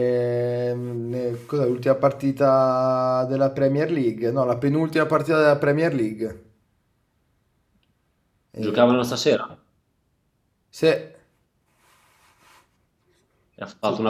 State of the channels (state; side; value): identical; both; correlation 1.00